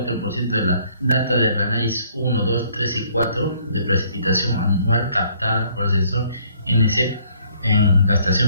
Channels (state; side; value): inverted; both; correlation -0.63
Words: de la data del análisis 1, 2, 3 y 4 de precipitación anual captada por el sensor NCEP en la